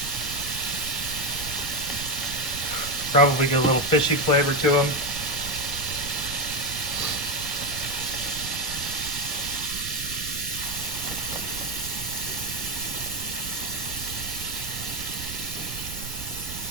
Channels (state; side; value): noise; right; rumble, 9 dB below the sound